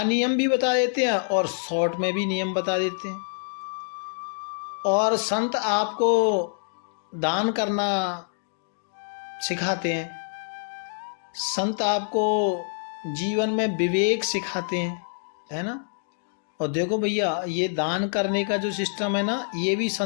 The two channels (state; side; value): silent; right; digital silence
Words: नियम भी बता देते हैं और शॉर्ट में भी नियम बता देते हैं। और संत आपको दान करना सिखाते हैं, संत आपको जीवन में विवेक सिखाते हैं, है ना। और देखो भैया, ये दान करने का जो सिस्टम है ना, ये भी